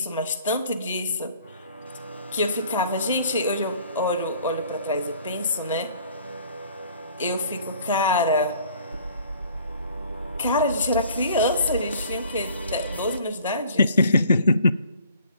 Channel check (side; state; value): both; inverted; correlation -0.54